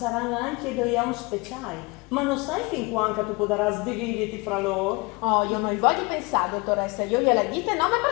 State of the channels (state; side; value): quieter; right; 26.4 dB